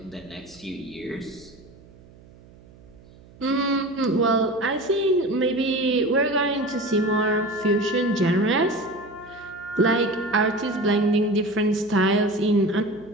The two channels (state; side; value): noise; right; hum, 24 dB below the sound